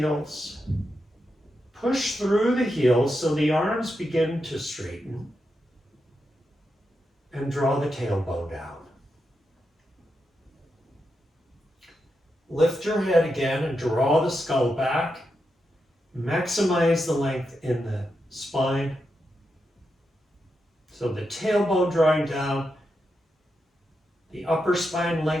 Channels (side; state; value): both; normal; correlation 0.86